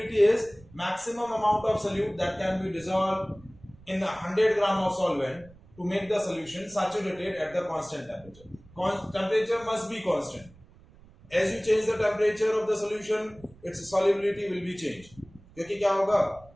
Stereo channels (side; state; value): right; noise; rumble, 24 dB below the sound